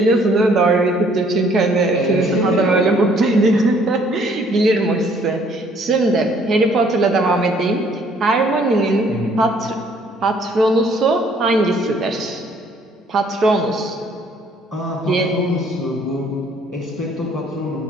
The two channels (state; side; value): normal; both; correlation 0.62